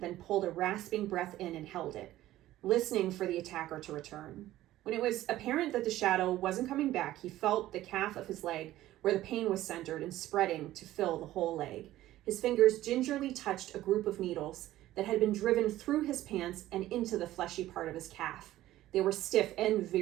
pulled a rasping breath in and held it, listening for the attacker to return. When it was apparent that the shadow wasn't coming back, he felt the calf of his leg, where the pain was centered and spreading to fill the whole leg. His fingers gingerly touched a group of needles that had been driven through his pants and into the fleshy part of his calf. They were stiff and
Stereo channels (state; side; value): quieter; left; 14.8 dB